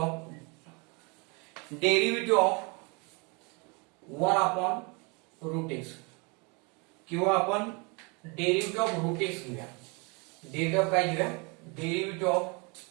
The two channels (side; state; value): left; quieter; 30.9 dB